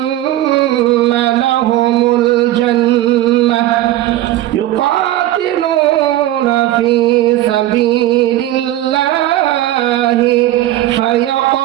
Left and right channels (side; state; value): left; quieter; 14.5 dB